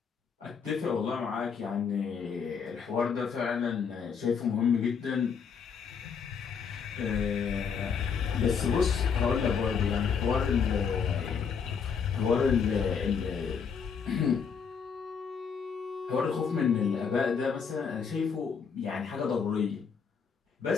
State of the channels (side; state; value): right; quieter; 6.3 dB